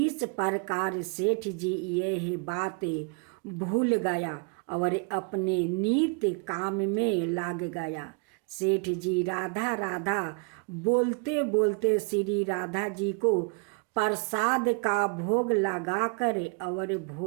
प्रकार सेठ जी यह बात भूल गया और अपने नित्य काम में लग गया। सेठ जी राधा राधा बोलते बोलते श्री राधा जी को प्रसाद का भोग लगाकर और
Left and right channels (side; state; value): left; quieter; 37.3 dB